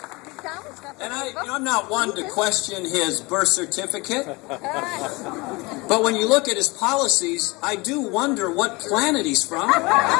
I'm not one to question his birth certificate, but when you look at his policies, I do wonder what planet he's from.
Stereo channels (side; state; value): right; quieter; 24.8 dB